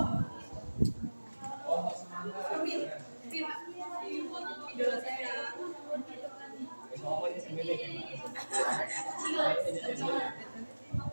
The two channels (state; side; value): inverted; both; correlation -1.00